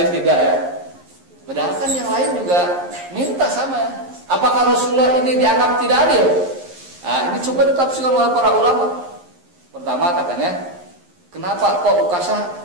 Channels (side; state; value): left; late; 11 ms